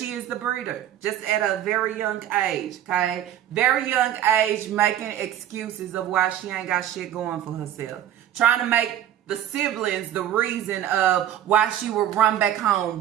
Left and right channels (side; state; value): left; quieter; 11.2 dB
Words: is the breeder. Just at a very young age, okay? Very young age making excuses of why she ain't got shit going for herself. Trying to make the siblings the reason of why she would run back home,